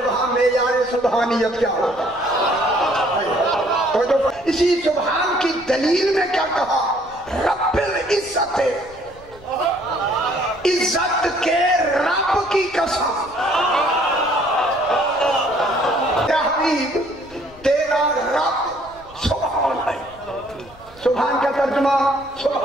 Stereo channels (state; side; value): noise; left; rumble, 23 dB below the sound